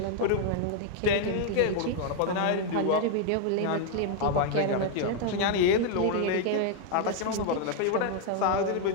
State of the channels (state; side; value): different; both; correlation 0.00